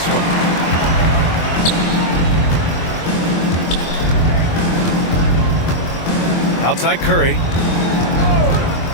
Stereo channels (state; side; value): late; right; 24 ms